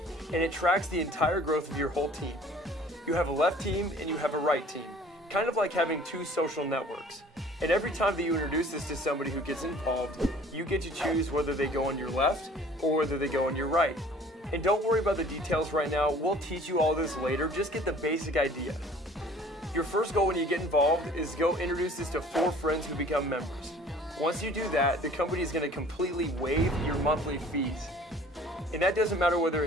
and it tracks the entire growth of your whole team. You have a left team and you have a right team, kind of like having two social networks. And every time that you introduce this to somebody who gets involved, you get to choose whether they go on your left or whether they go on your right. And don't worry about the details right now. We'll teach you all this later. Just get the basic idea. Your first goal when you get involved is go introduce this to 4 friends who become members. Once you do that, the company is going to completely waive your monthly fees. And that doesn't matter whether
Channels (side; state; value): both; normal; correlation 0.51